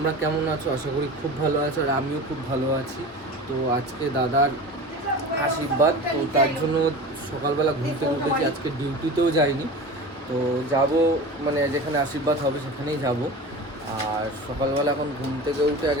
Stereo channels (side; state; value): both; normal; correlation 0.33